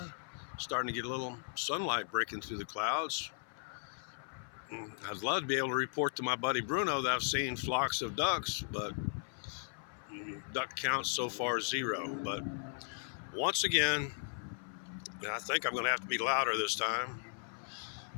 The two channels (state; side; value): silent; right; 53 dB below the other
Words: Starting to get a little sunlight breaking through the clouds. I'd love to be able to report to my buddy Bruno that I've seen flocks of ducks, but duck count so far 0. But once again, and I think I'm going to have to be louder this time.